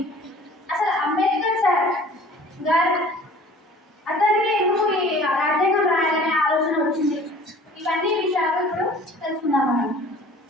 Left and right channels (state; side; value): normal; both; correlation 0.47